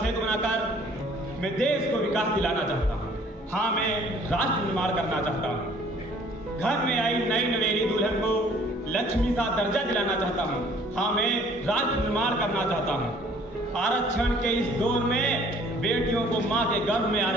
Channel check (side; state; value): both; normal; correlation 0.56